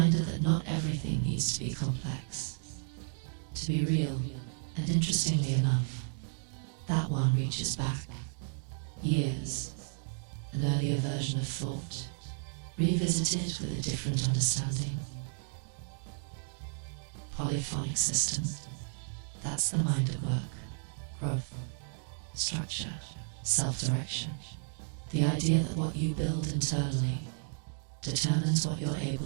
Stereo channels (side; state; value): left; silent; 56 dB below the other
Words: that not everything needs to be complex. To be real, and interestingly enough, that one reaches back. Years, an earlier version of thought, revisited with a different understanding. Polyphonic system, that's the mind at work. Growth, structure, self-direction. The idea that what you build internally determines what you're